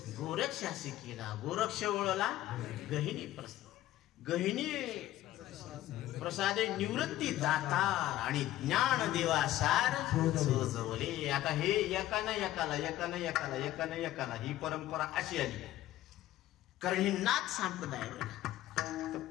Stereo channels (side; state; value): right; quieter; 14.5 dB